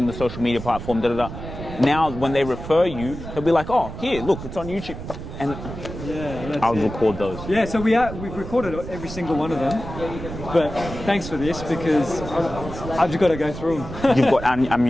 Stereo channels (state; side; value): noise; right; rumble, 10 dB below the sound